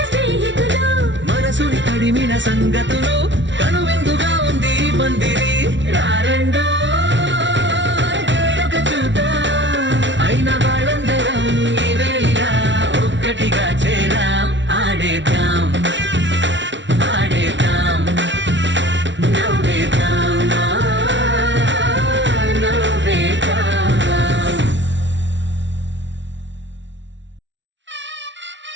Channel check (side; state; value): left; late; 0.54 ms